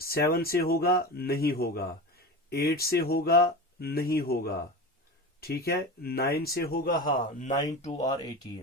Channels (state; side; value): normal; both; correlation 0.27